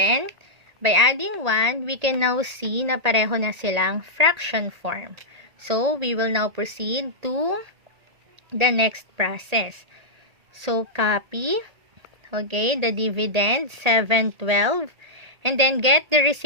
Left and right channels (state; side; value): late; left; 1.8 ms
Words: by adding 1, we can now see na pareho na silang fraction form. So, we will now proceed to the next process. So, copy, okay, the dividend, 7/12, and then get the